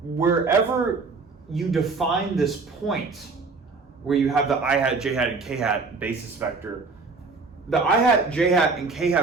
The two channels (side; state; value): left; quieter; 4.2 dB